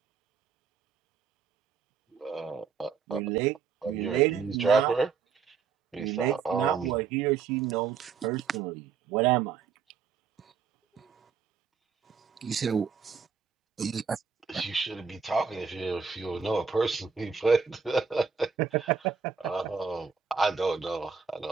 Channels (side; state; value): left; quieter; 5.9 dB